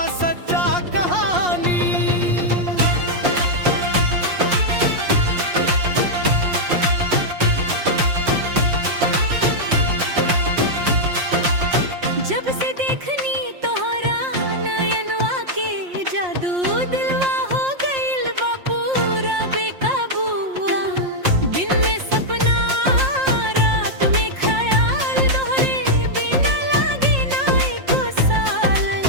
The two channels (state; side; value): late; left; 5.6 ms